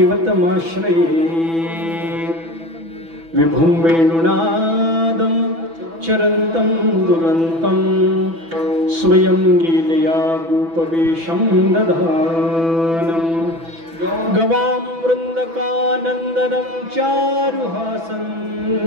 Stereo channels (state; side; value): late; left; 6.0 ms